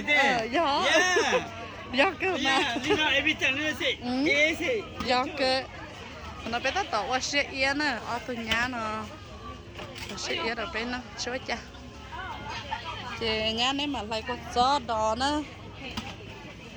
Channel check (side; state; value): both; identical; correlation 1.00